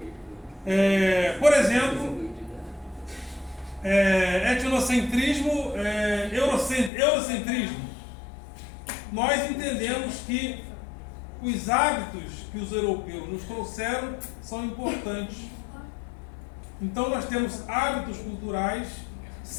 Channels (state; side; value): drops out; right; at 6.9 s